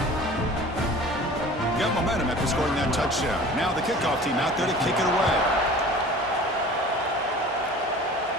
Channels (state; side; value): normal; both; correlation 0.43